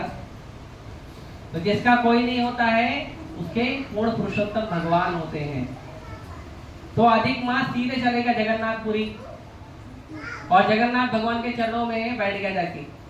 तो जिसका कोई नहीं होता है उसके पूर्ण पुरुषोत्तम भगवान होते हैं। तो अधिक मास सीधे चलेगा जगन्नाथपुरी और जगन्नाथ भगवान के चरणों में बैठ गया जाके,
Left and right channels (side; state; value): both; identical; correlation 1.00